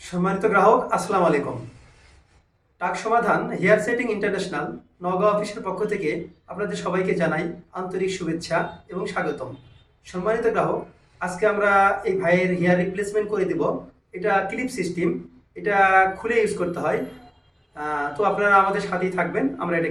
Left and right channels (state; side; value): identical; both; correlation 1.00